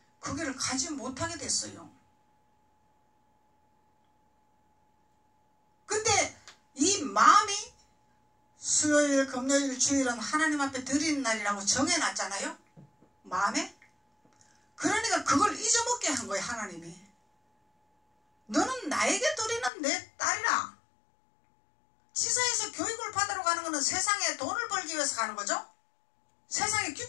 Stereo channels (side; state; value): right; drops out; at 19.7 s